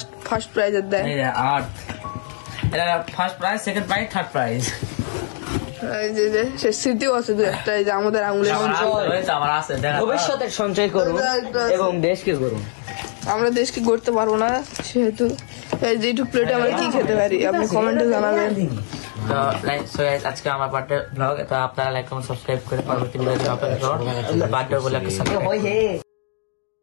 ফার্স্ট প্রাইজ দেয় আর এটা first prize second prize third prize এই যে সে স্মৃতিও আছে দু একটা এই যে আমাদের আঙুলের আমার আছে ভবিষ্যতের সঞ্চয় করব এবং দেশকে গড়ব আমরা দেশকে গড়তে পারবো না সেহেতু এই যে এইটুক প্লেটে আমরা কি খেতে পারি আপনি কমেন্টে জানাবেন তো লাইক সো আজকে আমার বার্থডে ব্লগ তো আপনারা লাইক কমেন্ট সাবস্ক্রাইব করে পরবর্তী ভিডিও আপনাদের বার্থডে বলে একটা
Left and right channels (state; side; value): silent; right; 65 dB below the other